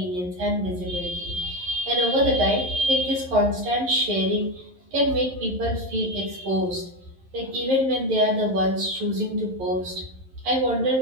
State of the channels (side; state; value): left; late; 11 ms